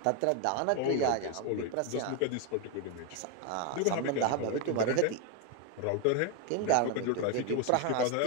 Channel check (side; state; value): both; different; correlation 0.01